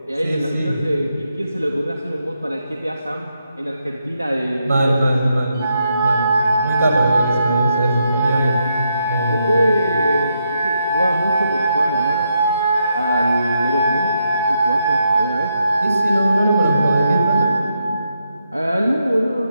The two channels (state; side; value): inverted; both; correlation -0.81